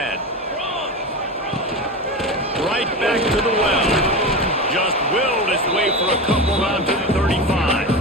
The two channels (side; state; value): both; normal; correlation 0.23